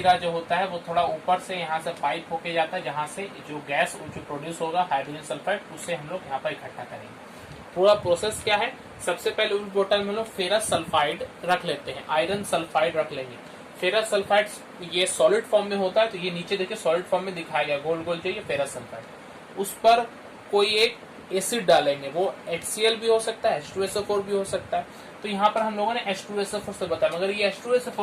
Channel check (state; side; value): identical; both; correlation 1.00